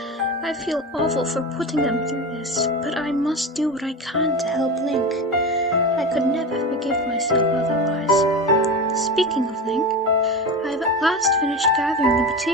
I feel awful for putting them through this, but I must do what I can to help Link. I could never forgive myself otherwise. Speaking of Link, I have at last finished gathering the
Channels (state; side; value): normal; both; correlation 0.24